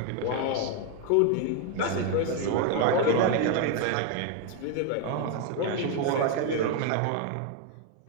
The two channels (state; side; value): different; both; correlation 0.01